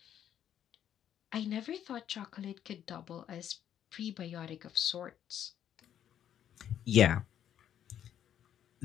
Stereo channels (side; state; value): right; quieter; 10.1 dB